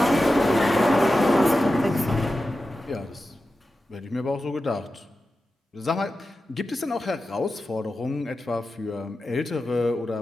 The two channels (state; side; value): normal; both; correlation 0.92